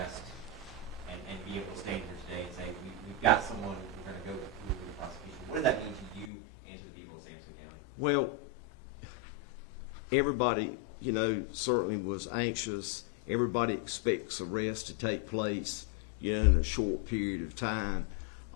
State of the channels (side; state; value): right; drops out; at 6.3 s